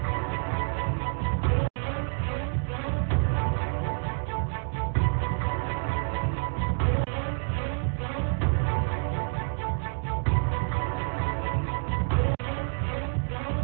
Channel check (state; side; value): silent; left; 59 dB below the other